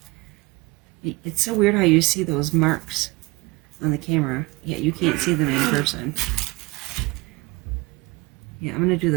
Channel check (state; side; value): quieter; left; 23.7 dB